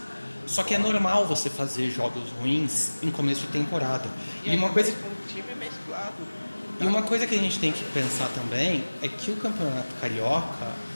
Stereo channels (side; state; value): both; inverted; correlation -1.00